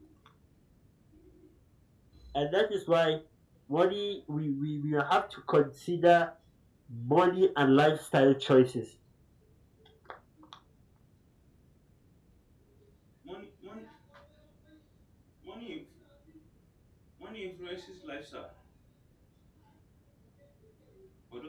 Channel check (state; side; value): identical; both; correlation 1.00